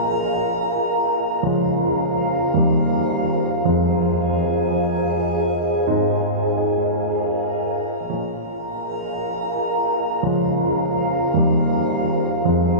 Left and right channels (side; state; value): left; late; 36 ms